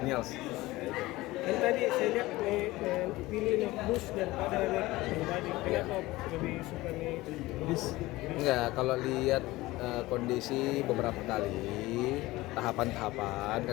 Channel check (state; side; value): quieter; right; 19.1 dB